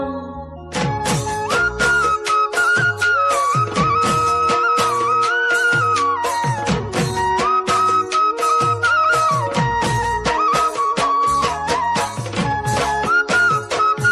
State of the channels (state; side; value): identical; both; correlation 1.00